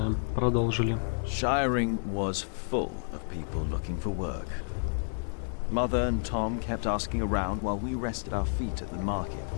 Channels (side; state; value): right; silent; 58 dB below the other